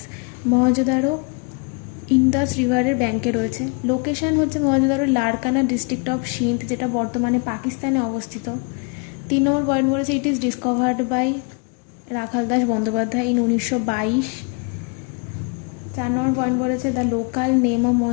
Mohenjodaro Indus রিভারের ব্যাঙ্কে রয়েছে। লোকেশান হচ্ছে মহেঞ্জোদারো লারকানা ডিস্ট্রিক্ট অফ সিন্ধ, যেটা বর্তমানে পাকিস্তানে অবস্থিত। 3 নম্বর পয়েন্ট বলেছে, it is discovered by Rakhaldas Bandyopadhyay in 1922। 4 নম্বর পয়েন্ট বলেছে, the local name of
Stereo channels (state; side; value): quieter; right; 34.4 dB